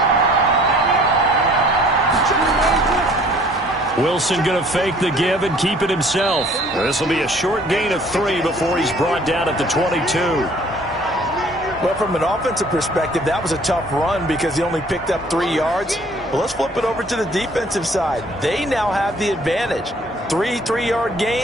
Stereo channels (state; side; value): normal; both; correlation 0.55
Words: Wilson going to fake the give and keep it himself. This will be a short gain of 3 before he's brought down at the 22. Well, from an offensive perspective, that was a tough run because he only picked up 3 yards. Well, let's flip it over to the defensive side. They now have the advantage. 3 3-yard